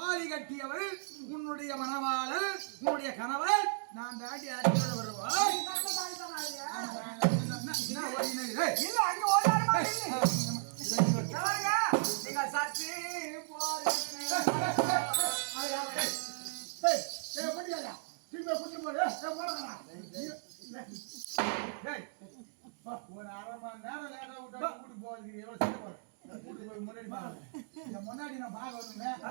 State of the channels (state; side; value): silent; left; digital silence